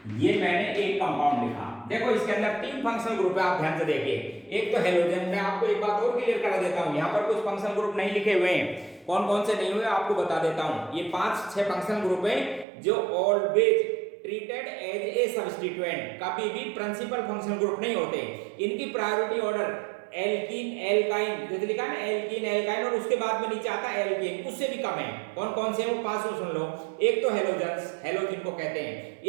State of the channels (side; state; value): left; drops out; at 12.7 s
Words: ये मैंने एक कंपाउंड लिखा, देखो इसके अंदर 3 फंक्शनल ग्रुप है, आप ध्यान से देखिए। एक तो हेलोजन, मैं आपको एक बात और क्लियर करा देता हूं, यहां पर कुछ फंक्शनल ग्रुप नहीं लिखे हुए हैं, कौन कौन से नहीं हुए आपको बता देता हूं। ये 5-6 फंक्शनल ग्रुप हैं जो always treated as a substituent, कभी भी प्रिंसिपल फंक्शनल ग्रुप नहीं होते। इनकी प्रायोरिटी ऑर्डर एल्कीन, एल्काइन, जैसे लिखा है ना एल्कीन, एल्काइन, और उसके बाद में नीचे आता है एल्केन, उससे भी कम है। कौन कौन से हैं वो 5 सुन लो। एक तो हेलोजन्स, हेलोजन को कहते हैं।